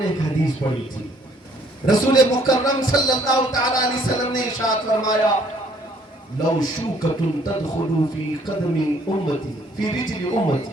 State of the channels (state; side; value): normal; both; correlation 0.62